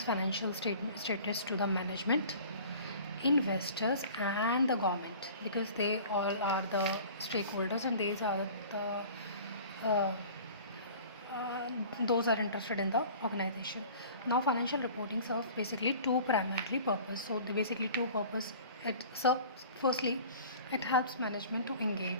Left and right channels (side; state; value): both; inverted; correlation -0.44